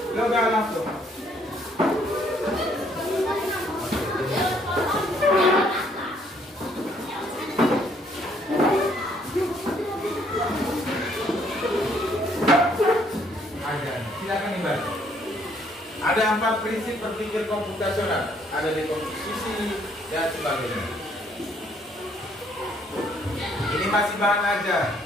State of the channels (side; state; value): both; normal; correlation 0.66